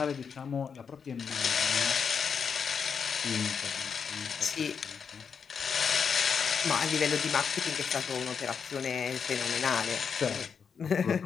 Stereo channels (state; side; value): quieter; right; 6.4 dB